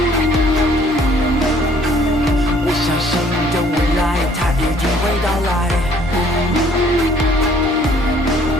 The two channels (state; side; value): normal; both; correlation 0.59